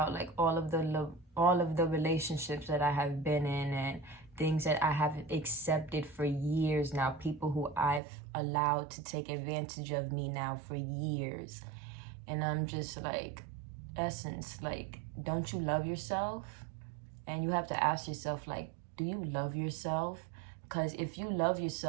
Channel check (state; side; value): drops out; left; at 8.0 s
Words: like all of the relationships that I have been in, and things that I have accepted for years now, people who I've allowed to take advantage of me now for years. And I'm just like, Essence, like, don't you love yourself? And you have to ask yourself, like, do you love yourself? Because if you love